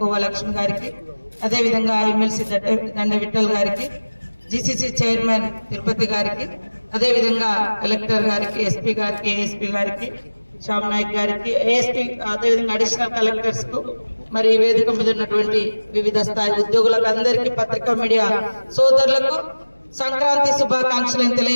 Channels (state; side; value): inverted; both; correlation -1.00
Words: లక్ష్మి గారికి, అదేవిధంగా ఎమ్మెల్సీ దండ విఠల్ గారికి, జీసీసీ చైర్మన్ తిరుపతి గారికి, అదేవిధంగా కలెక్టర్ గారికి, ఎస్పీ గారికి, ఏఎస్పీ గారికి, శ్యామ్ నాయక్ గారికి, ఏఎస్పీ, అదేవిధంగా అడిషనల్ కలెక్టర్స్ కు, మరి వేదిక మీద ఉన్నటువంటి వివిధ స్థాయి ఉద్యోగులకు అందరికీ, పత్రికా మీడియా సోదరులకు సంక్రాంతి శుభాకాంక్షలను